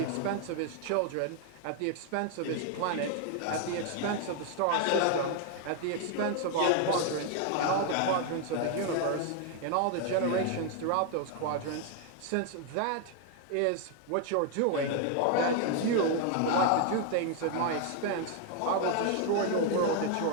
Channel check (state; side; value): different; both; correlation 0.00